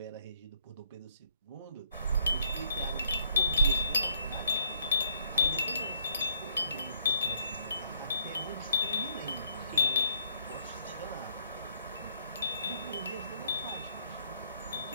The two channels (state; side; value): inverted; both; correlation -0.66